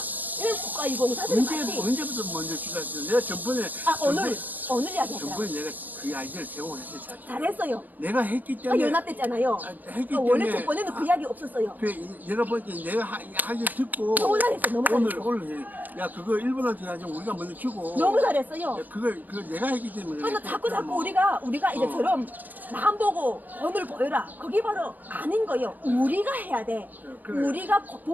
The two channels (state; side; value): late; left; 0.084 ms